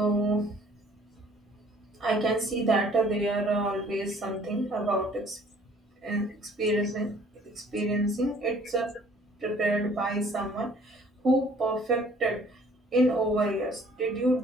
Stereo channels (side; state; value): both; normal; correlation 0.56